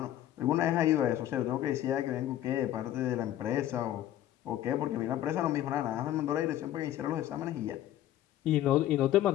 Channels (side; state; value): right; quieter; 12.6 dB